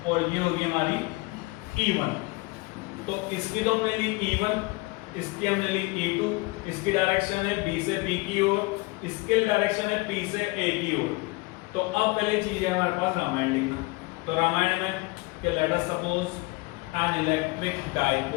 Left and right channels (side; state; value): right; quieter; 24.7 dB